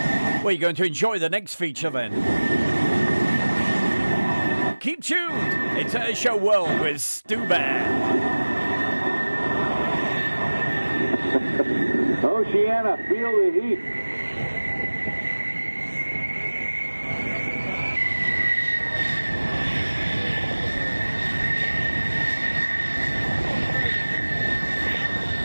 Well, you're going to enjoy the next feature then. Keep tuned. It's Airshow World with Stu Bear. Oceana, feel the heat.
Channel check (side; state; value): both; inverted; correlation -1.00